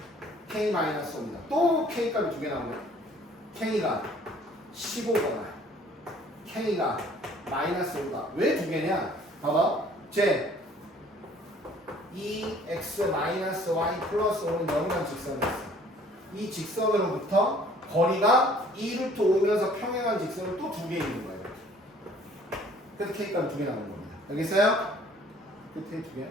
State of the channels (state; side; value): normal; both; correlation 0.55